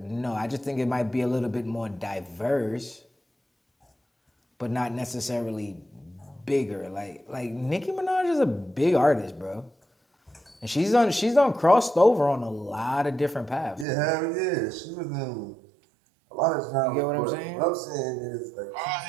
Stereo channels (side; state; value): left; drops out; at 13.9 s